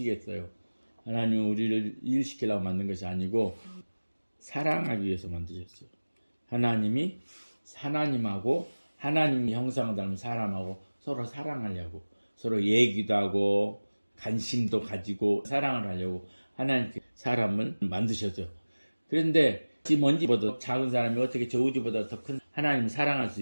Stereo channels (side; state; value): both; inverted; correlation -1.00